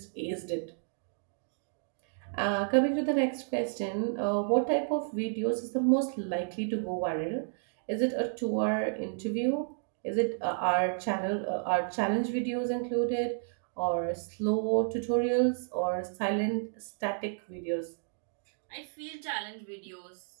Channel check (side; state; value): left; silent; digital silence